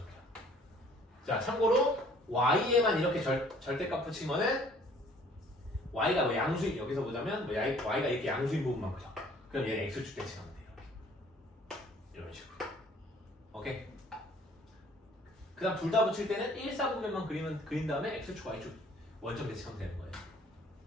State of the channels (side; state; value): both; normal; correlation 0.56